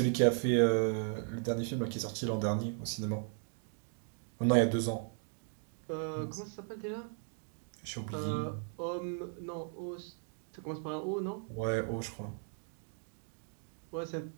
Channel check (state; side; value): silent; left; 53 dB below the other